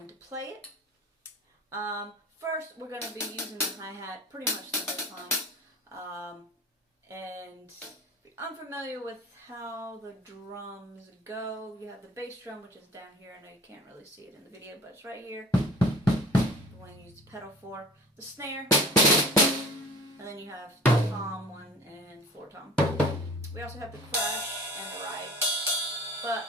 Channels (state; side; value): normal; both; correlation 0.44